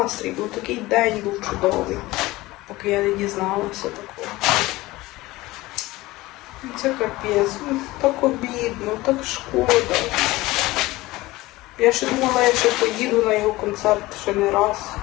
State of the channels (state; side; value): quieter; right; 19.2 dB